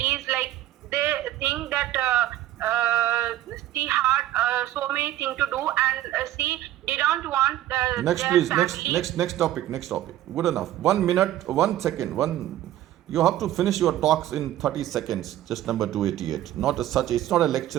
Like they think that she had so many things to do, and she didn't want Next, their please. family. Next topic. Good enough. 1 minute, 1 second. You have to finish your talks in 30 seconds. Just number 288. It's not a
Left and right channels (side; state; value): left; quieter; 13.5 dB